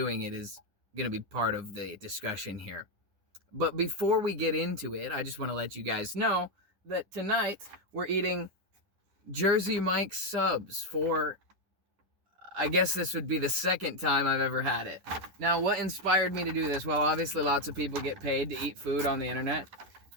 it is going to be part of the discussion here. But before we get into it, I just want to let you guys know that tonight we're eating Jersey Mike's subs for, I guess this would be the second time I've ever had it. Now, what inspired me to do this? Well, obviously lots of people get paid to eat food on the internet.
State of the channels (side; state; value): left; late; 10 ms